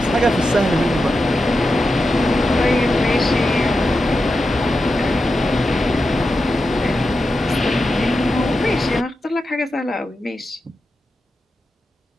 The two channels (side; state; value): both; normal; correlation 0.89